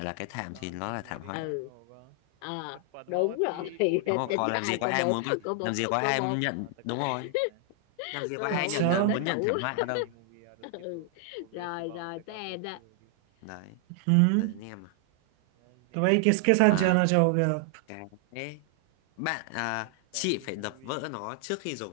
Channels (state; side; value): different; both; correlation 0.00